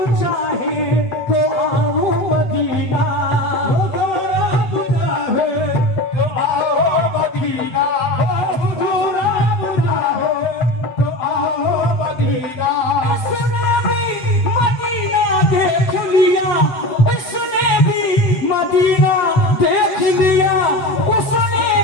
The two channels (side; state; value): right; late; 7.9 ms